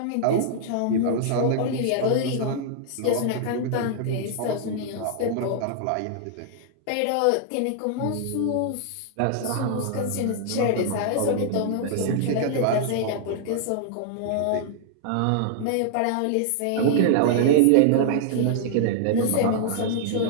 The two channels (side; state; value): both; different; correlation -0.01